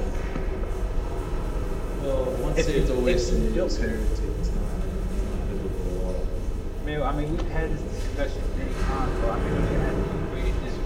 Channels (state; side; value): identical; both; correlation 1.00